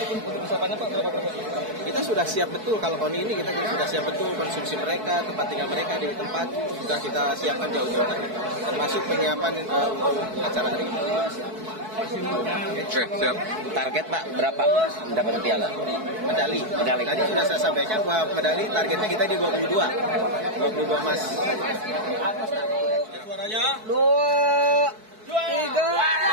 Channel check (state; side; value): late; left; 4.6 ms